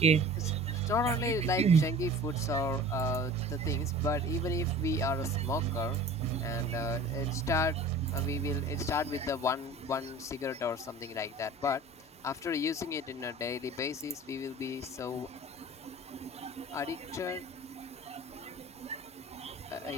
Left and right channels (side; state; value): both; normal; correlation 0.42